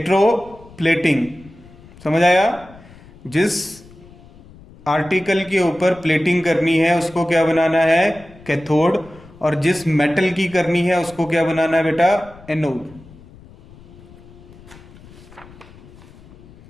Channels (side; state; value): left; noise; rumble, 22 dB below the sound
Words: समझ आया। जिस आर्टिकल के ऊपर प्लेटिंग करनी है उसको क्या बनाना है, कैथोड, और जिस मेटल की करनी है उसको क्या बनाना है बेटा, anode.